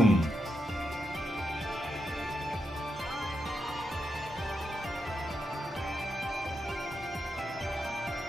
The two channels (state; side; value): normal; both; correlation 0.85